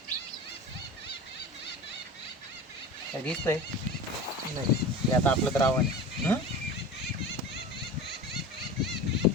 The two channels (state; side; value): normal; both; correlation 0.33